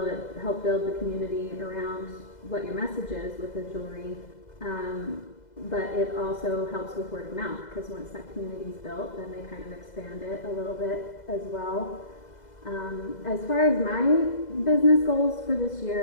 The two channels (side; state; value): right; late; 2.0 ms